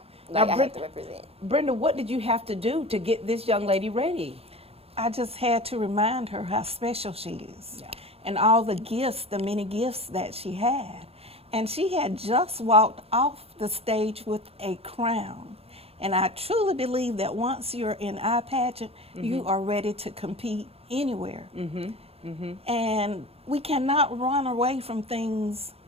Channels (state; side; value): late; left; 0.29 ms